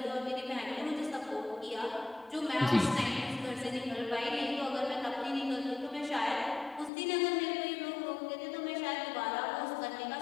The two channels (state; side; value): drops out; right; at 6.9 s